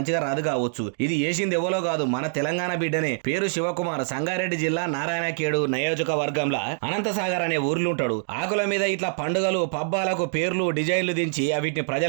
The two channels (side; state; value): left; silent; digital silence